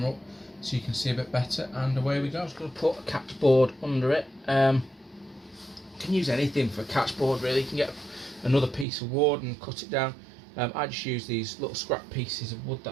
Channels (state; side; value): drops out; left; at 8.8 s